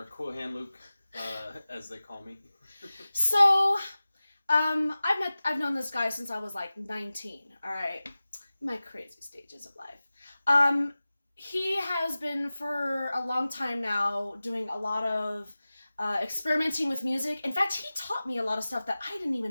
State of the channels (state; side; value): inverted; both; correlation -0.97